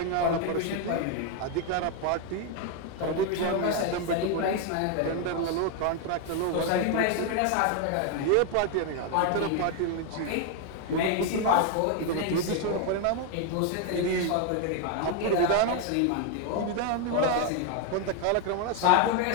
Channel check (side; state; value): both; different; correlation 0.01